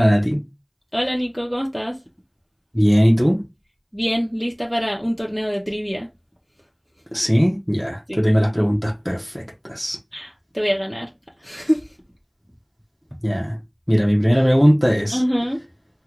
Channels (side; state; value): both; identical; correlation 1.00